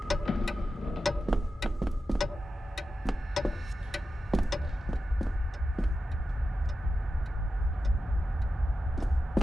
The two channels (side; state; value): both; normal; correlation 0.91